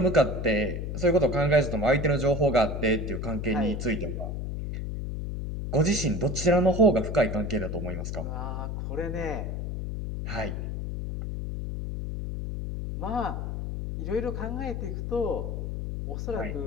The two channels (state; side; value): noise; left; hum, 4 dB below the sound